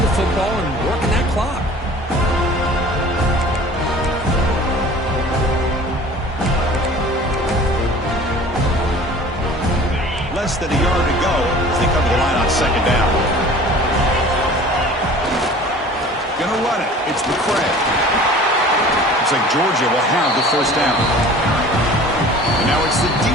football and working that clock. Less than a yard to go as they come to the line on second down. Gonna run it. It's McCray. Looks like Georgia will have the first down. And now it's the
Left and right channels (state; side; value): normal; both; correlation 0.45